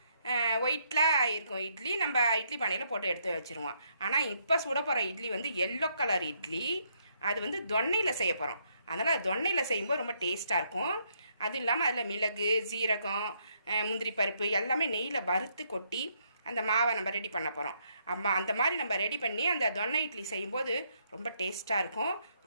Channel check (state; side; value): inverted; both; correlation -0.74